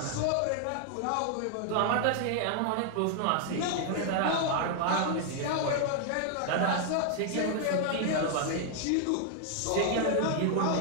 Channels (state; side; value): different; both; correlation 0.00